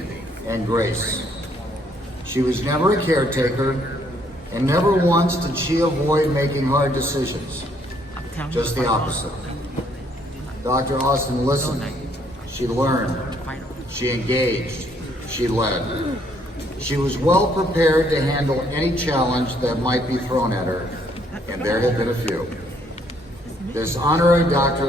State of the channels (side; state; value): both; normal; correlation 0.67